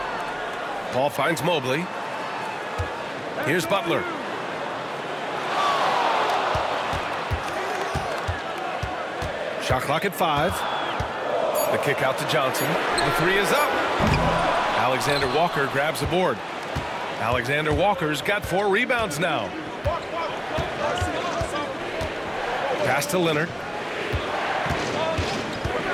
Paul finds Mobley. Here's Butler. Shot clock at 5. The kick out to Johnson. The 3 is up. Alexander Walker grabs the board. Alexander Walker's got 4 rebounds now. Pass to Leonard.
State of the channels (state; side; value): identical; both; correlation 1.00